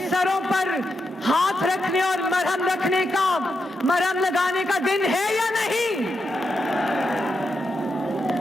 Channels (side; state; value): both; normal; correlation 0.84